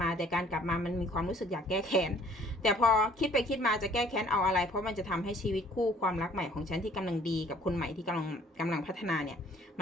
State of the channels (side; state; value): both; normal; correlation 0.57